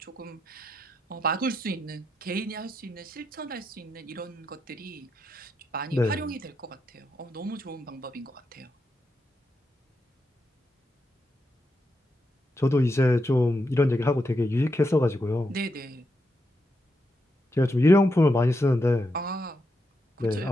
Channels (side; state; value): both; normal; correlation 0.83